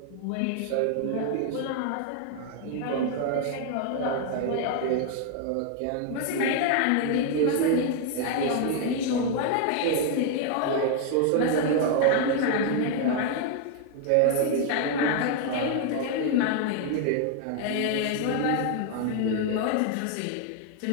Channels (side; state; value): both; different; correlation 0.00